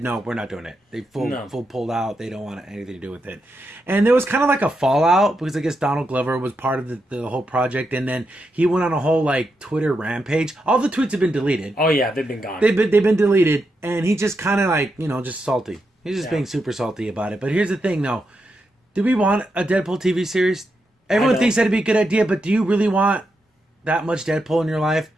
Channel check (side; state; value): both; normal; correlation 0.84